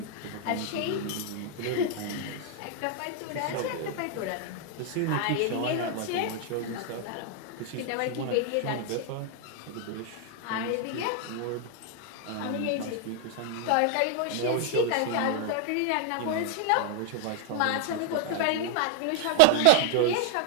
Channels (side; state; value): both; different; correlation 0.00